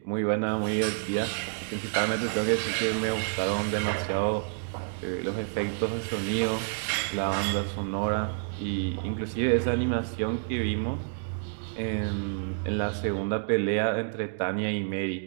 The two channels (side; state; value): left; silent; digital silence